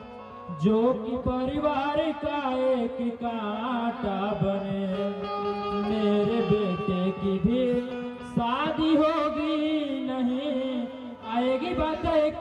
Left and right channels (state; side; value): identical; both; correlation 1.00